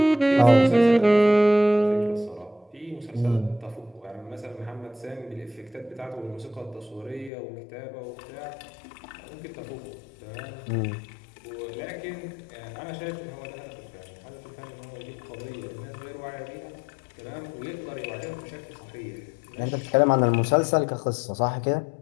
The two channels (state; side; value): drops out; right; at 7.3 s